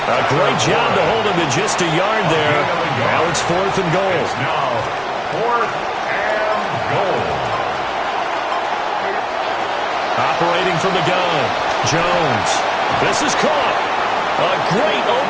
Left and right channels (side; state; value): both; identical; correlation 1.00